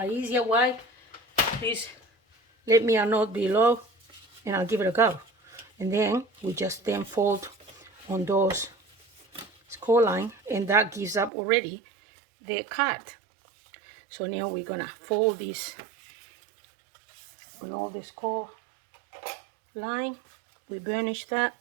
easier way, please let me know below, and I'll give it a go. And then we just then fold on those score line, and that gives up already the card. So now we're gonna fold this on all the score line. We burnish that.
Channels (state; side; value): drops out; left; at 11.3 s